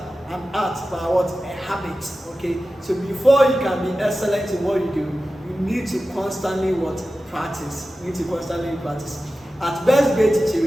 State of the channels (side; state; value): both; normal; correlation 0.94